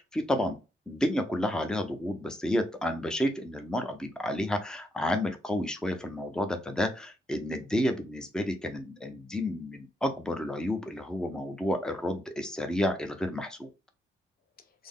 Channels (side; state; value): both; normal; correlation 0.79